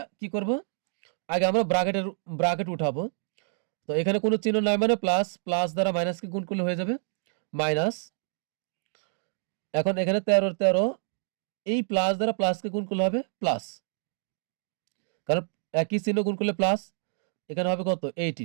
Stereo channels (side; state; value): left; silent; digital silence